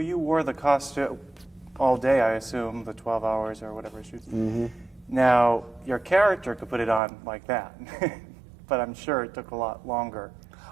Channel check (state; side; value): drops out; left; at 7.0 s